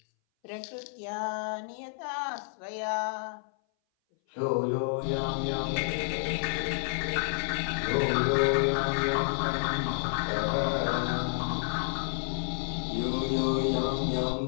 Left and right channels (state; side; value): silent; right; 58 dB below the other